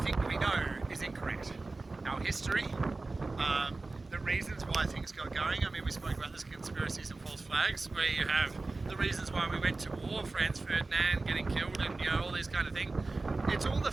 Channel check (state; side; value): quieter; left; 3.4 dB